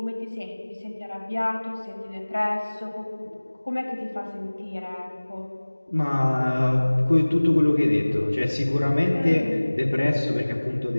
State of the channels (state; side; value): inverted; both; correlation -1.00